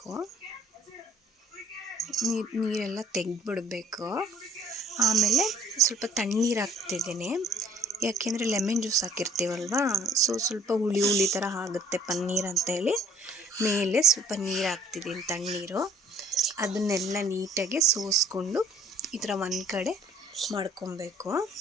ನೀರೆಲ್ಲ ತೆಗೆದ್ಬಿಡ್ಬೇಕು. ಆಮೇಲೆ ಸ್ವಲ್ಪ ತಣ್ಣೀರು ಹಾಕ್ತಿದ್ದೀನಿ. ಯಾಕೆಂದರೆ ಲೆಮನ್ ಜ್ಯೂಸ್ ಹಾಕಿರ್ತೀವಲ್ವ, ಸೊ ಸ್ವಲ್ಪ ಹುಳಿ ಥರ ಆಗುತ್ತೆ ಪನ್ನೀರ್ ಅಂತೇಳಿ ಮೇಲೆ ಸ್ವಲ್ಪ ನೀರು ಹಾಕ್ತಿದ್ದೀನಿ, ತಣ್ಣೀರು. ಅದನ್ನೆಲ್ಲ ನೀಟಾಗಿ ಸೋಸ್ಕೊಂಡು ಈ ಥರ ಒಂದು ಕಡೆ ಮಾಡ್ಕೊಬೇಕು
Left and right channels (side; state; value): both; normal; correlation 0.57